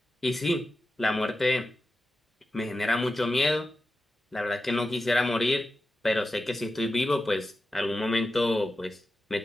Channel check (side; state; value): both; normal; correlation 0.92